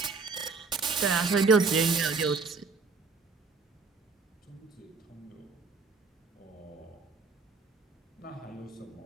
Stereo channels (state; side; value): quieter; left; 4.4 dB